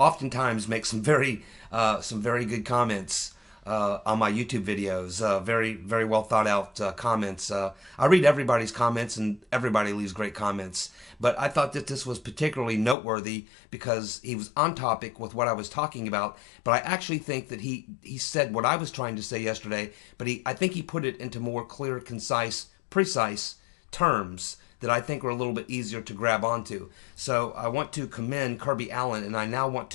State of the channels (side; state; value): right; drops out; at 13.0 s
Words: makes some very good comments on my YouTube videos, very, very well thought out comments. I read everybody's comments, and everybody leaves great comments. But I thought that this was particularly noteworthy because he was on topic with what I was talking about. But I actually think that he said what I was trying to say yesterday, but I think he put it into more clear, concise, precise terms that I think are a little bit easier to grab onto. So I want to commend Kirby Allen, and I now want